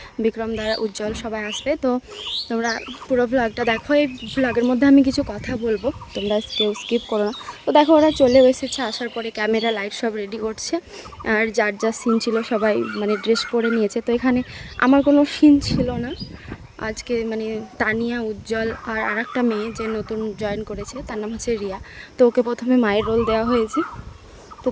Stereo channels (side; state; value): both; identical; correlation 1.00